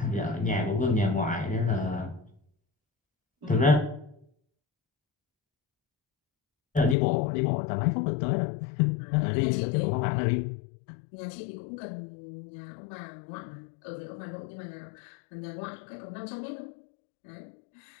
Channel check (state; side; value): drops out; right; at 7.0 s